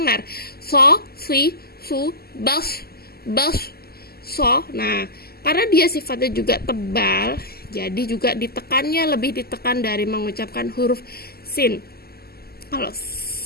So, si, su, bas, so. Nah, karena dia sifatnya juga tebal, jadi juga lebih ditekan dari mengucapkan huruf sin. Kalau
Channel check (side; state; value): right; late; 0.45 ms